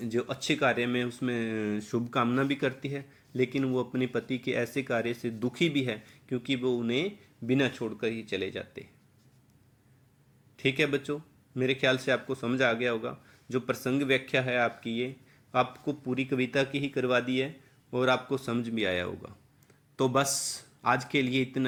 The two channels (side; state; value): both; identical; correlation 1.00